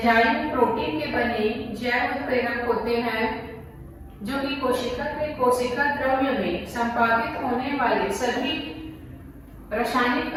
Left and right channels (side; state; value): both; identical; correlation 1.00